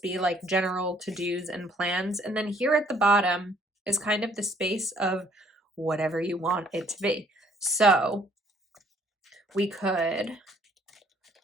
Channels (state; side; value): normal; both; correlation 0.62